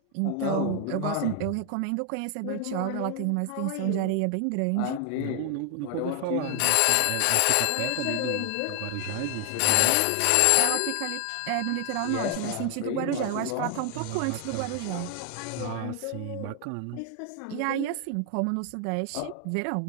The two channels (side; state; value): both; different; correlation 0.00